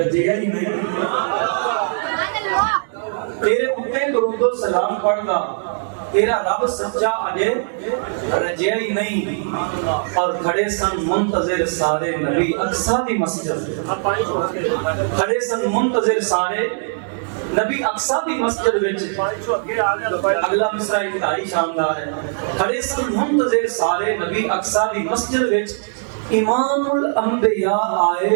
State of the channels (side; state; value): left; silent; digital silence